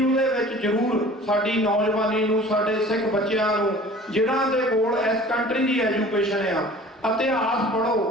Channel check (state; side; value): normal; both; correlation 0.45